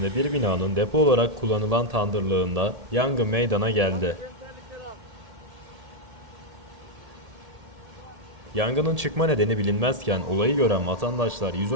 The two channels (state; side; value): late; left; 1.7 ms